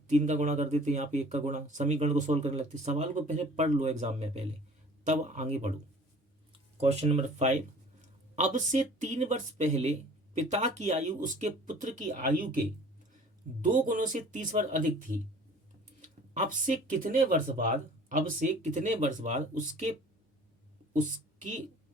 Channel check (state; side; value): normal; both; correlation 0.49